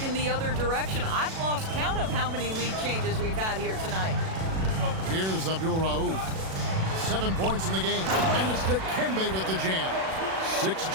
in the other direction. I've lost count of how many lead changes we've had here tonight. Here's Abdul-Rauf. 7 points in the game. And it's Dikembe with the jam. 6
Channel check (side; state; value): left; late; 37 ms